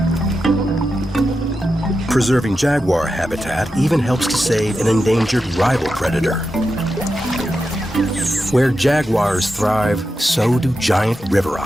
Preserving jaguar habitat even helps to save an endangered rival predator. Where jaguars thrive, so do giant river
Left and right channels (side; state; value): both; normal; correlation 0.89